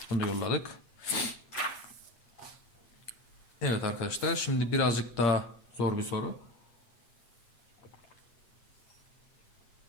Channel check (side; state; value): right; late; 8.3 ms